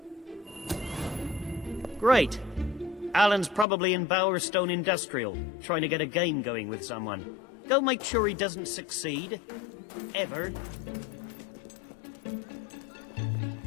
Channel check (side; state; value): right; drops out; at 3.7 s